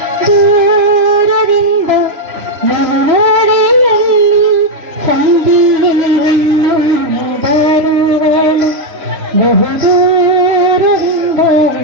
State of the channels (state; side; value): late; left; 3.0 ms